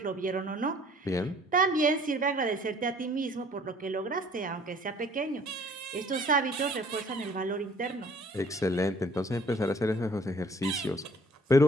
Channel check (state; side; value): normal; both; correlation 0.56